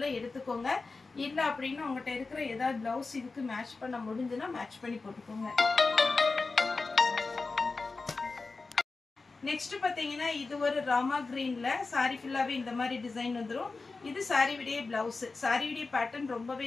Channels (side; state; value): right; quieter; 3.9 dB